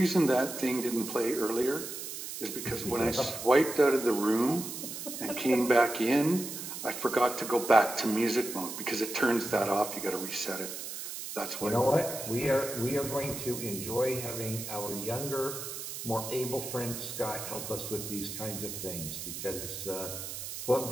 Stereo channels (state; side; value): noise; right; hiss, 7 dB below the sound